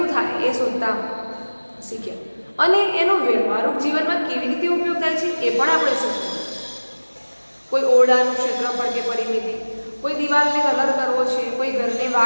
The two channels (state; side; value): inverted; both; correlation -1.00